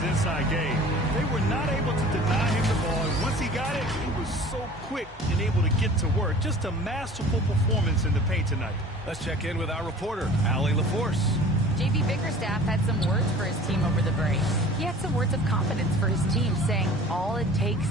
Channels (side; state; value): both; normal; correlation 0.44